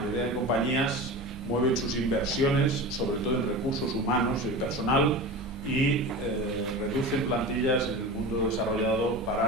de compañías mueven sus inversiones, sobre todo en recursos humanos y personal, y reducen plantillas en el mundo desarrollado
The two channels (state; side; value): normal; both; correlation 0.30